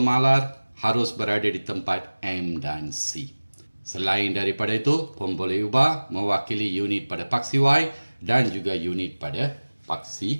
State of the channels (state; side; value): inverted; both; correlation -1.00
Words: harus berada di tempat M dan C. Selain daripada itu, pun boleh ubah mewakili unit pada paksi Y dan juga unit pada